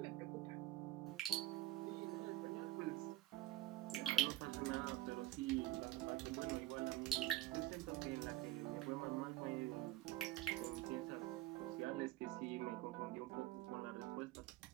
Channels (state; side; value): quieter; left; 14.4 dB